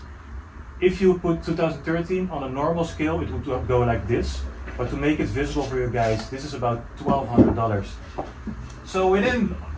if you put 2013 on a normal scale, it would go like this. But to make it visible for you guys, this is about $1,200. So within,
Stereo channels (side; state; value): both; identical; correlation 1.00